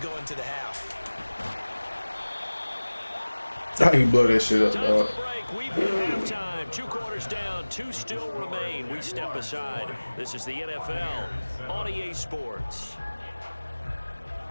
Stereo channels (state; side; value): inverted; both; correlation -1.00